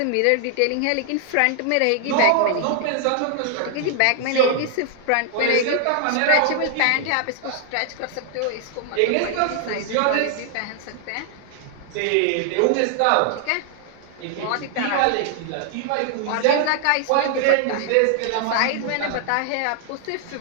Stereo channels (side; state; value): both; different; correlation 0.00